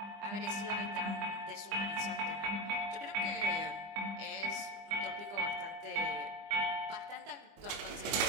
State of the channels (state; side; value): late; left; 25 ms